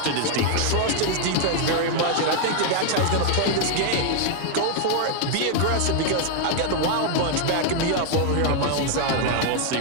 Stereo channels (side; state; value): both; different; correlation 0.00